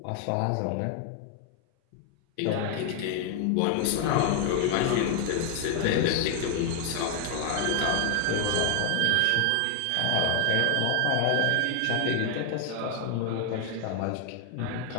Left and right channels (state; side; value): different; both; correlation 0.00